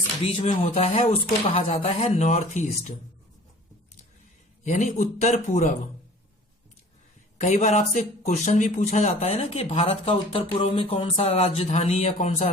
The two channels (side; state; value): both; normal; correlation 0.46